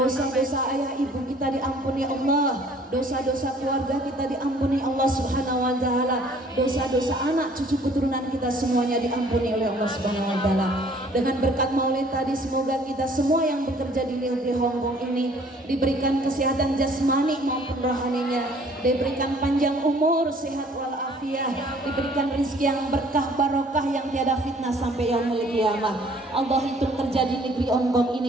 ayah ibu kita diampuni Allah, dosa-dosa keluarga kita diampuni Allah Subhanahu wa taala, dosa-dosa anak cucu keturunan kita semuanya diampuni oleh Allah Subhanahu wa taala. Dengan berkat maulid tadi semoga kita semua yang bekerja di negeri Hong Kong ini diberikan kesehatan jasmani maupun rohaninya, diberikan panjang umur, sehat walafiat, diberikan rezeki yang berkah barokah yang tiada fitnah sampai yaumul qiyamah. Allah itu kerja di negeri Hong Kong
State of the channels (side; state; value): both; normal; correlation 0.56